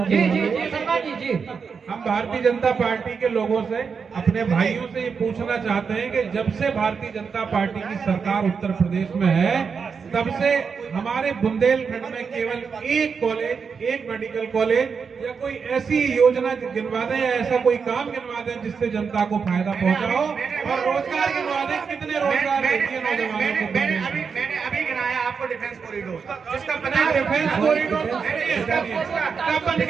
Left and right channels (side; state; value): left; quieter; 5.8 dB